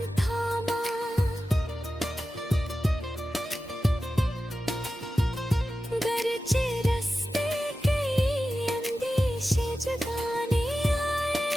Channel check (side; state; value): both; normal; correlation 0.93